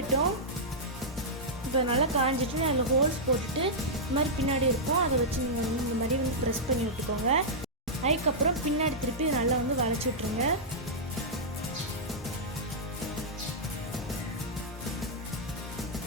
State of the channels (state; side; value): normal; both; correlation -0.10